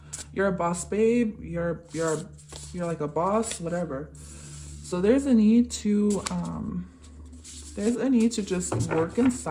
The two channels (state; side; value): identical; both; correlation 1.00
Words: You're a boss, babe. You're like a boss, whatever. So there's a need to just work in